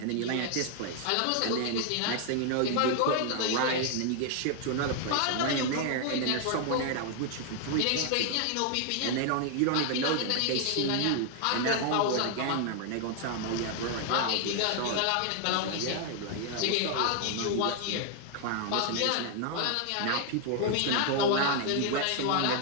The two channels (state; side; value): different; both; correlation 0.00